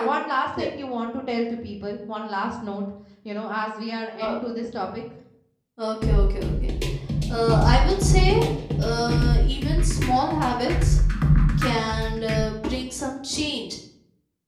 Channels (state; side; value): identical; both; correlation 1.00